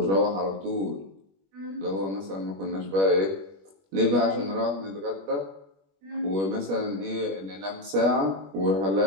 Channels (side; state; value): left; late; 21 ms